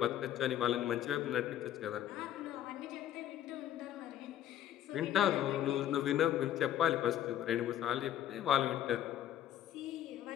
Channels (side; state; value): right; quieter; 11.5 dB